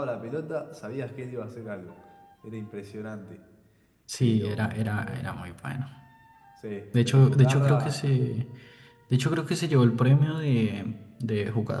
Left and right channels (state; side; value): identical; both; correlation 1.00